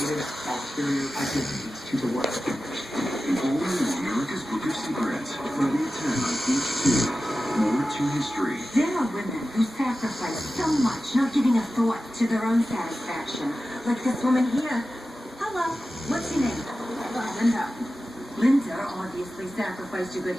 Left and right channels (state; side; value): normal; both; correlation 0.94